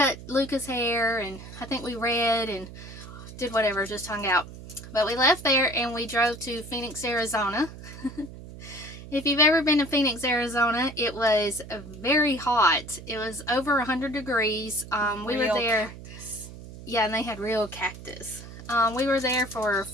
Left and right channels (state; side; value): noise; right; hum, 14 dB below the sound